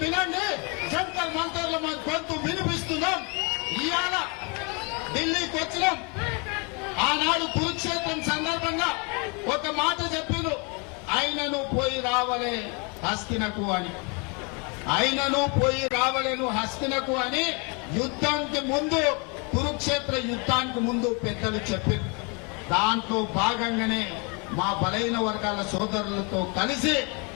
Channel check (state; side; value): quieter; right; 33.0 dB